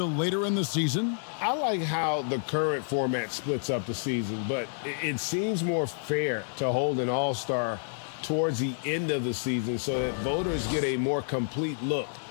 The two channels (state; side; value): silent; right; digital silence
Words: later in the season? I like how the current format splits up the season, but it seems more fair to hold an all-star towards the end of the season so that voters get a more complete look